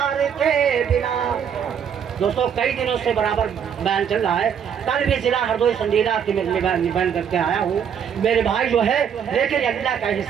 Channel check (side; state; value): left; quieter; 7.9 dB